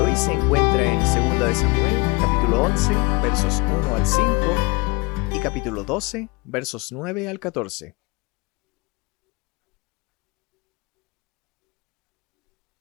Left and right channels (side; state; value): right; quieter; 25.7 dB